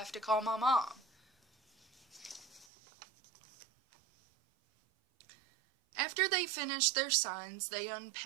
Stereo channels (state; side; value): drops out; left; at 2.7 s